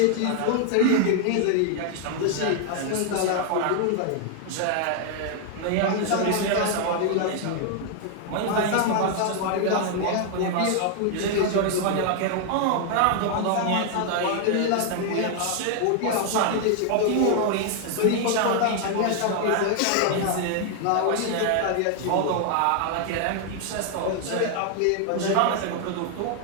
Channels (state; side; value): different; both; correlation 0.00